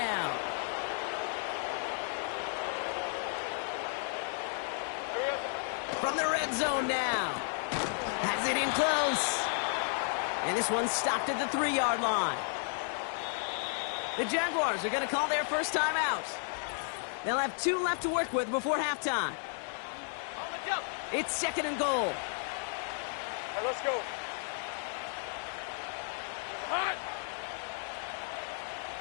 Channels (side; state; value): right; silent; 55 dB below the other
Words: From the red zone now. Has it in close. And this one's stopped at the 3-yard line. The Jaguars are going to call their first time out. They'll have 2 left to work with before halftime. It's 2nd and goal. Right, let's go. Hot.